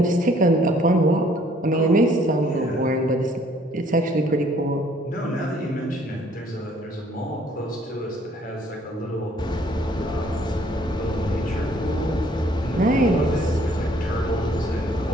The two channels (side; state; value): both; normal; correlation 0.61